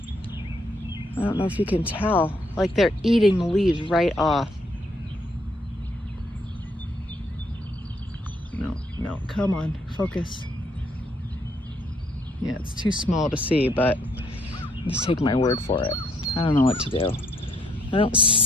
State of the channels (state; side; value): normal; both; correlation 0.69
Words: I don't know if you can tell. Like they're eating the leaves right off. No, come on, focus. Yeah, it's too small to see, but just take my word for it. I don't know what to do. I don't